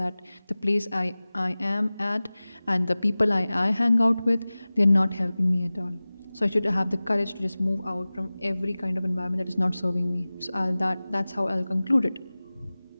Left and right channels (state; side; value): inverted; both; correlation -0.98